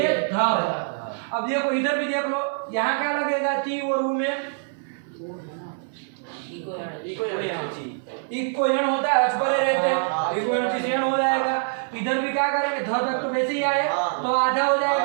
धा अब देखो इधर भी देख लो यहाँ क्या लगेगा ती और ऊ में इको यण होता है अच परे रहते हैं इको यण से यण हो जाएगा इधर भी क्या करेंगे ध तक तो वैसे ही आए तो आधा हो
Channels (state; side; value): silent; left; 60 dB below the other